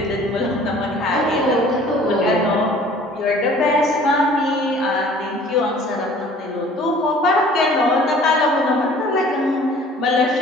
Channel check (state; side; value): normal; both; correlation 0.50